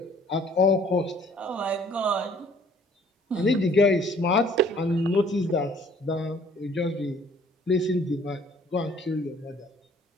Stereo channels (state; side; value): normal; both; correlation 0.58